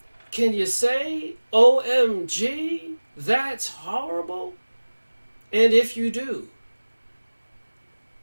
Can you say, OMG, that's horrible? And if you do,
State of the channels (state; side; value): inverted; both; correlation -1.00